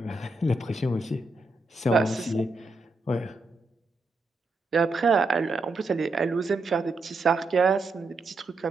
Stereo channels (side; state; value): left; quieter; 3.2 dB